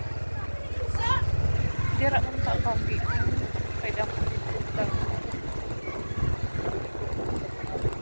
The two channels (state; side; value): inverted; both; correlation -1.00